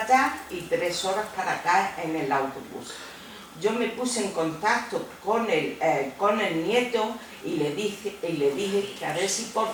allá y 3 horas para acá en el autobús. Yo me puse en contacto con el nieto y le dije que a ver si por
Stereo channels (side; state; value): both; identical; correlation 1.00